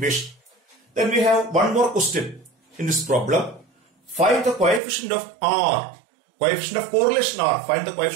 Then we have one more question in this problem. Find the coefficient of R, coefficient of correlation R. Find the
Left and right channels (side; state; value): left; drops out; at 4.8 s